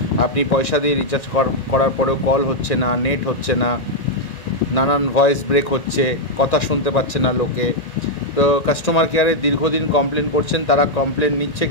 আপনি পয়সা দিয়ে রিচার্জ করার পরেও কল হচ্ছে না, নেট হচ্ছে না, নানান ভয়েস ব্রেক হচ্ছে, কথা শুনতে পাচ্ছে না লোকে। তো কাস্টমার কেয়ারে দীর্ঘদিন কমপ্লেন করছেন, তারা কমপ্লেন নিচ্ছে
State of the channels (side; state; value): right; late; 1.9 ms